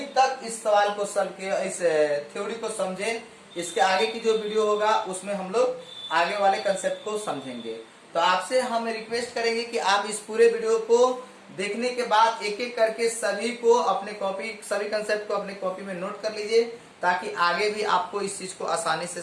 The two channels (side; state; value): both; identical; correlation 1.00